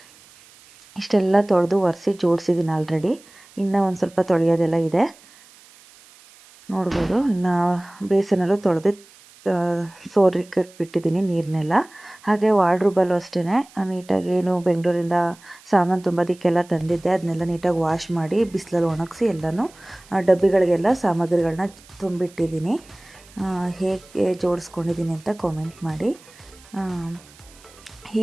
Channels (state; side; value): noise; right; hiss, 25 dB below the sound